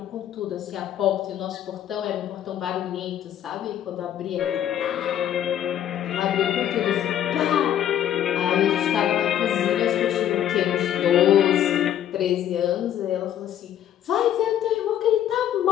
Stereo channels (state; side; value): quieter; right; 10.8 dB